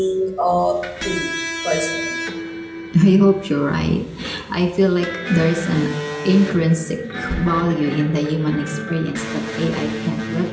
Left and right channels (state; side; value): identical; both; correlation 1.00